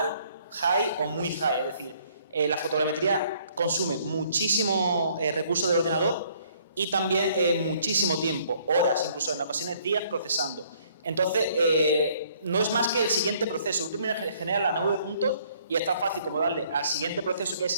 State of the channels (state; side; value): inverted; both; correlation -0.62